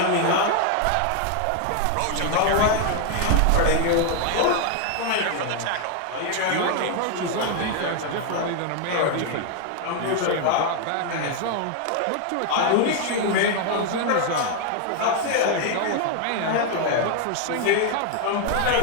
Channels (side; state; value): both; different; correlation 0.00